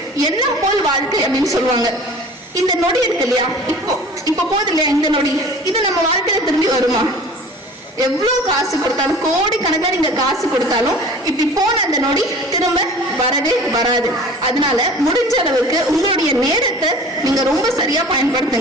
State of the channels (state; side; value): normal; both; correlation 0.43